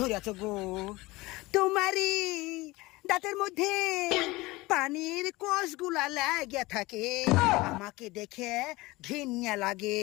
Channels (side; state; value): right; quieter; 21.2 dB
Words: ধরিয়াছ গো। তোমারই দাঁতের মধ্যে পানির কোষগুলা লাগিয়া থাকে, আমাকে দেখে ঘৃণা লাগে,